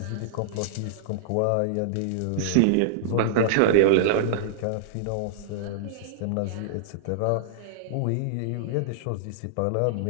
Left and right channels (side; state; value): both; different; correlation -0.01